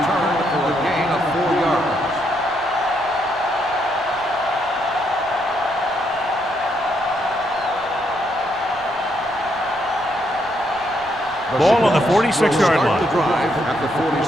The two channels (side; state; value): right; noise; rumble, 23 dB below the sound